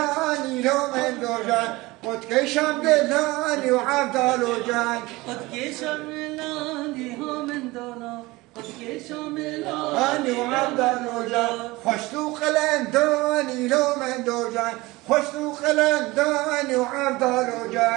لو من دوجان قد كشم دلاني وعبد الوجان قد كشم دلاني هو من دونا قد كشم اني وعبد الوجان خشتو قلنداني لو من دوجان خشتو قلنداني وعبد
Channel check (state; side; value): quieter; left; 21.1 dB